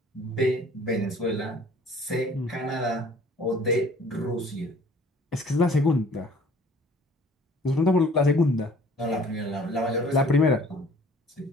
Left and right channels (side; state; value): both; normal; correlation 0.53